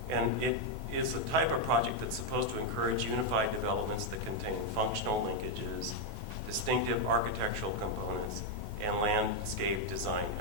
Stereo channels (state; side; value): normal; both; correlation 0.01